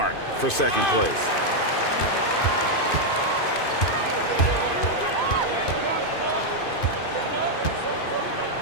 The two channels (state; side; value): late; right; 2.5 ms